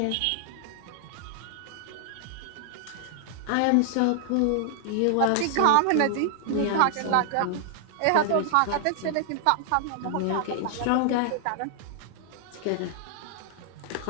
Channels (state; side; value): different; both; correlation 0.00